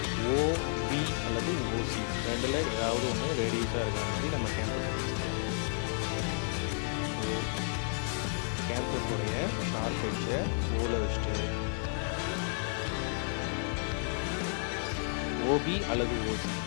ஓபி அல்லது ஓசி ரெண்டில் ஏதாவது ஒன்று ரேடியஸாக இருக்கிற மாதிரி நம்ம கேம்பஸை ஃபிக்ஸ் பண்ணிடுவோம். ஸோ கேம்பஸோடைய ஷார்ப் எட்ஜை ஓல வச்சுட்டு ஓபி அல்லது ஓசி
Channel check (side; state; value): right; silent; digital silence